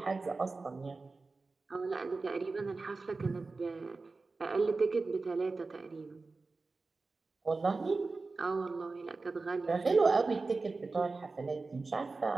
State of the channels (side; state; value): left; quieter; 3.8 dB